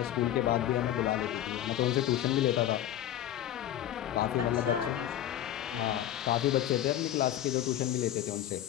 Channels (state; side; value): quieter; right; 12.1 dB